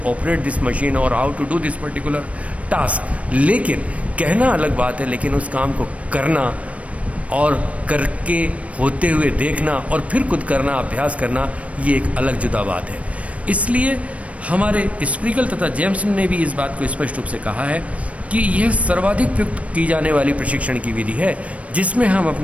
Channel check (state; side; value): late; left; 0.065 ms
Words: operate this machine और how to do this particular task, लेकिन कहना अलग बात है, लेकिन उस काम को करना और करके होते हुए देखना और फिर खुद करना, अभ्यास करना, ये एक अलग जुदा बात है. इसलिए हमारे स्प्रिगल तथा जेम्सन ने भी इस बात को स्पष्ट रूप से कहा है कि यह सर्वाधिक प्रयुक्त की जाने वाली प्रशिक्षण की विधि है, जिसमें हम